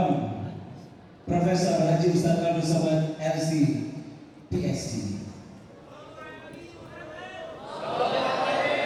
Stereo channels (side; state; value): both; identical; correlation 1.00